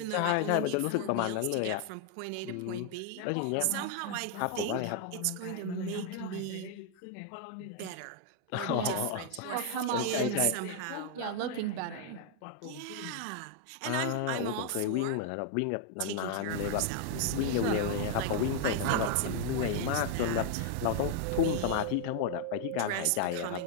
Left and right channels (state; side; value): different; both; correlation 0.00